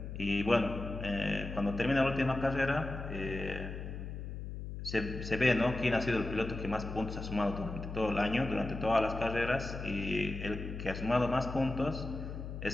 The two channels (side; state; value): left; noise; hum, 7 dB below the sound